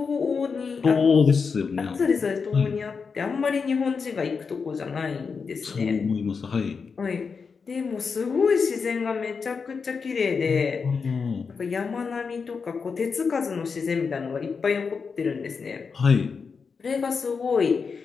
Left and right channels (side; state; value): right; quieter; 5.4 dB